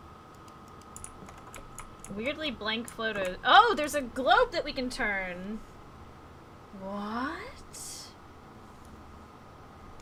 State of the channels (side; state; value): both; identical; correlation 1.00